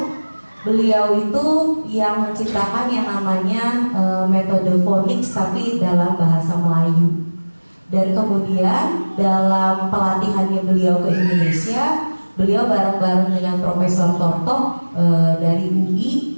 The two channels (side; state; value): both; inverted; correlation -1.00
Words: Beliau itu yang menciptakan yang namanya metode phonics tapi dalam bahasa Melayu. Dan kemudian dalam pelatihannya beliau ke Indonesia, beliau bareng-bareng dengan Profesor Tortok dari UI